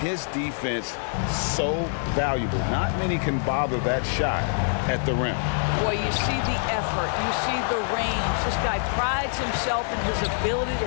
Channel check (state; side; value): silent; right; digital silence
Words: defense, so valuable. Not many can bother that shot at the rim. Boy, you see the effort. You see the range. This guy prides himself in his ability